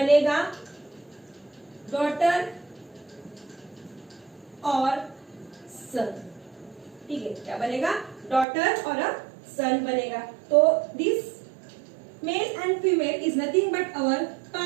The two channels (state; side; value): drops out; left; at 8.5 s